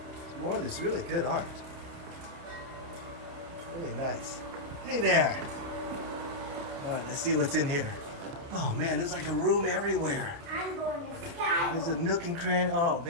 More of this really good art. Really nice. Hey there. All right, let's see what's in here. Oh man, there's like a room everywhere. I'm going to sky. There's a nook and cranny. Oh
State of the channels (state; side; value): late; left; 30 ms